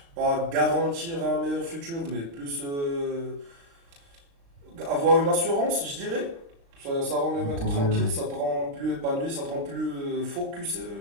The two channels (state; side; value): late; left; 36 ms